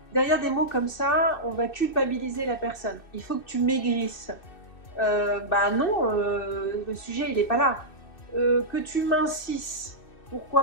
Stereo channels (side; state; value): right; late; 2.6 ms